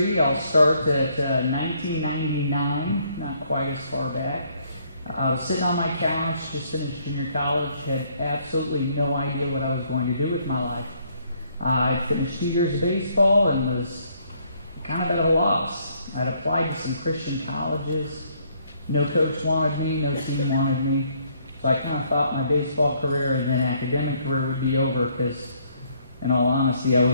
I'll start at 1999, not quite as far back. I was sitting on my couch, just finished junior college, had absolutely no idea what I was going to do with my life. I finished 2 years of baseball and was kind of at a loss. I'd applied to some Christian colleges. No coach wanted me, no team wanted me. So I kind of thought my baseball career and then academic career would be over because, in all honesty, I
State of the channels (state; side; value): inverted; both; correlation -0.67